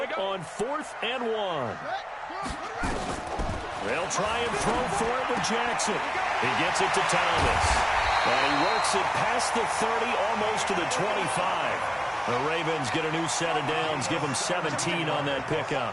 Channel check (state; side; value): identical; both; correlation 1.00